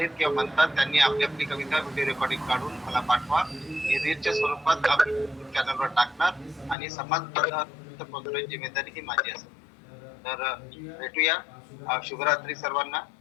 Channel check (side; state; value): right; drops out; at 6.8 s